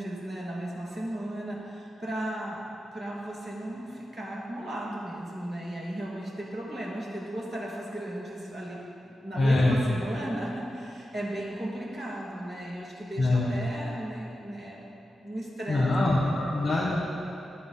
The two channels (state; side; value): normal; both; correlation 0.91